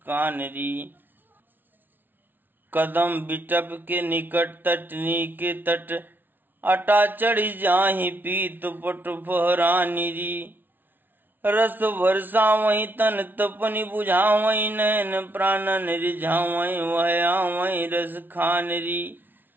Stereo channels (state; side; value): late; left; 0.092 ms